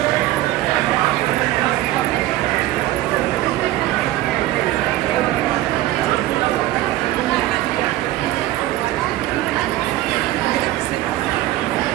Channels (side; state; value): left; quieter; 15.7 dB